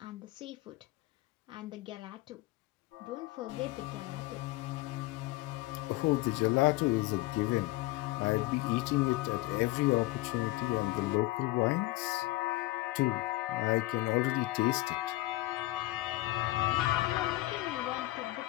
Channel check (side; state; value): right; quieter; 19.0 dB